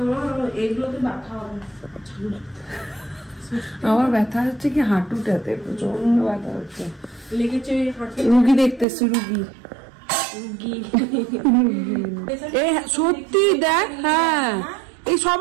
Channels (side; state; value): left; drops out; at 8.8 s